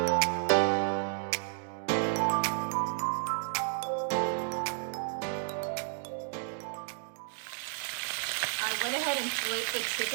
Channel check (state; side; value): silent; left; digital silence